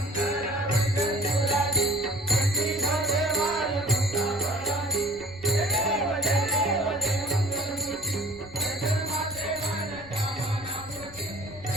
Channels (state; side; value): noise; left; rumble, 19 dB below the sound